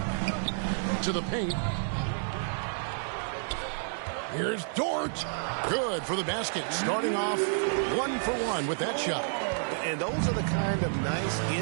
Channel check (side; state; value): left; silent; digital silence